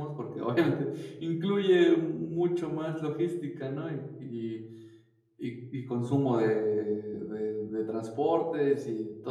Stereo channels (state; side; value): identical; both; correlation 1.00